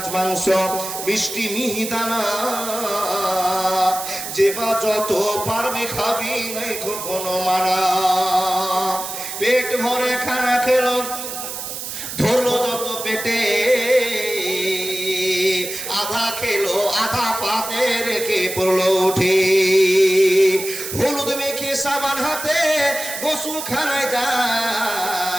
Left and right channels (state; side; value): noise; right; hiss, 7 dB below the sound